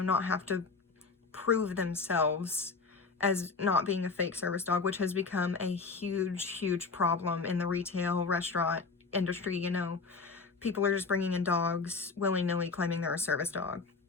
not have to prove themselves as not being a fake service dog, which has become a huge problem in the retail restaurant industry. People are just bringing in dogs willy-nilly claiming they're a service dog.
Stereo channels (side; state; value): right; quieter; 4.4 dB